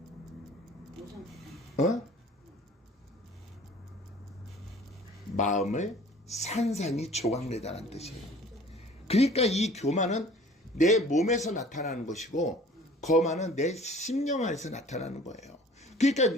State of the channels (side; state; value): both; normal; correlation 0.49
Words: 마음을 산산이 조각내다라는 뜻이에요. 그러니까 이 교만은 내 몸에서 나타나는 것이고 거만은 내 심령 안에서 나타나는 거예요.